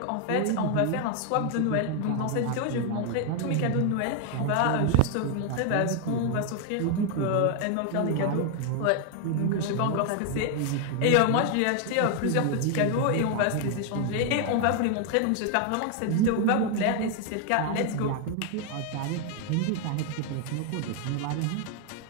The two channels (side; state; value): both; different; correlation 0.00